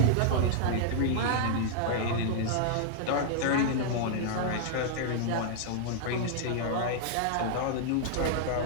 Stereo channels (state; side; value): different; both; correlation -0.01